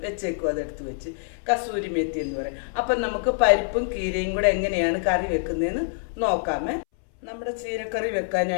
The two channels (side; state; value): right; silent; 61 dB below the other